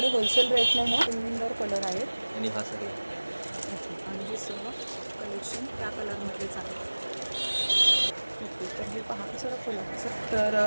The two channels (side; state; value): both; inverted; correlation -1.00